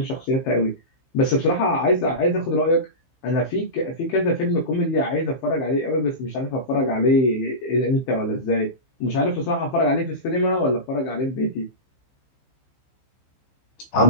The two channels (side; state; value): right; late; 15 ms